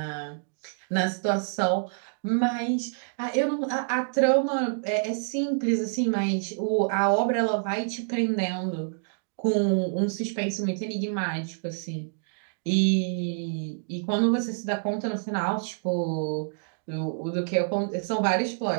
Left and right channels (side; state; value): left; silent; digital silence